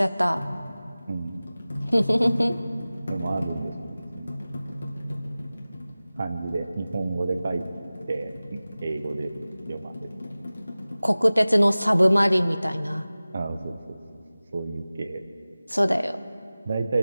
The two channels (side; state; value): both; inverted; correlation -0.97